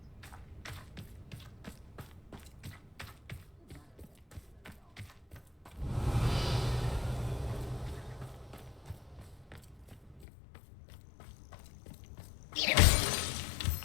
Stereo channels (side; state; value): right; drops out; at 10.2 s